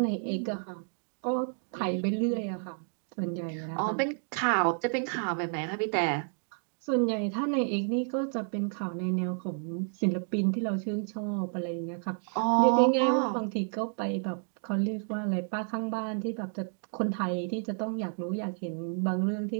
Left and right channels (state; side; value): silent; left; 57 dB below the other